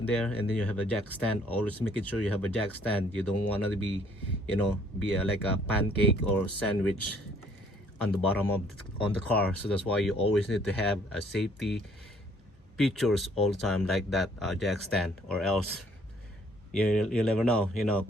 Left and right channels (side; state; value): both; normal; correlation 0.62